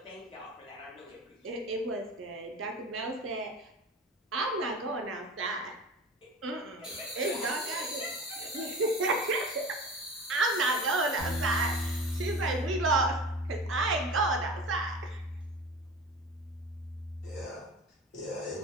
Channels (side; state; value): both; normal; correlation 0.35